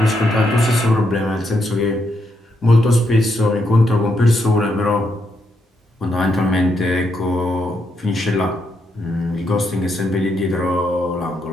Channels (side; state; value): both; normal; correlation 0.79